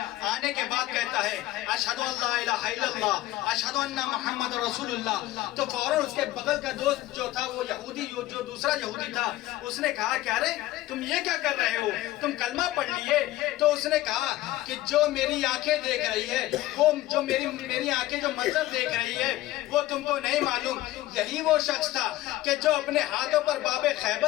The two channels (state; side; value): quieter; right; 16.1 dB